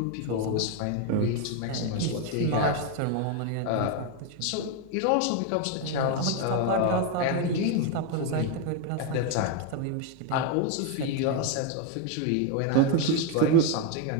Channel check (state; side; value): different; both; correlation 0.02